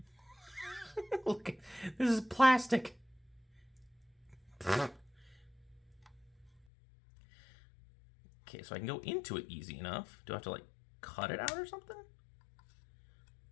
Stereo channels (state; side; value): drops out; right; at 6.5 s